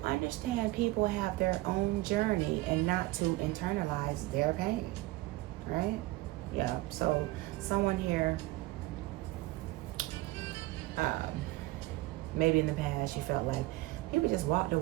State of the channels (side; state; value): left; quieter; 19.2 dB